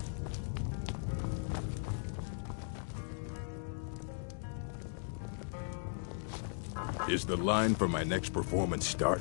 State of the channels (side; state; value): right; silent; digital silence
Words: Is the line for my next performance start?